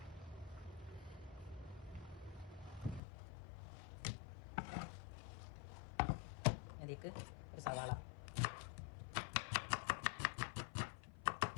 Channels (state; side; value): drops out; right; at 3.0 s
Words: അതിലേക്ക് ഒരു സവാള,